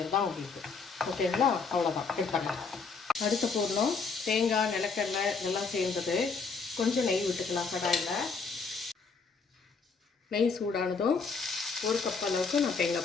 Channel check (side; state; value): right; quieter; 4.9 dB